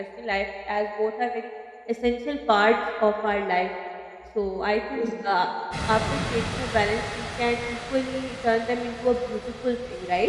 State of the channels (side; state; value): both; identical; correlation 1.00